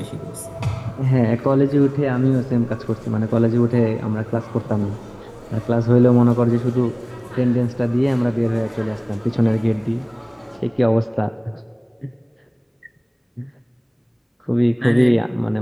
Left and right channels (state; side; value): identical; both; correlation 1.00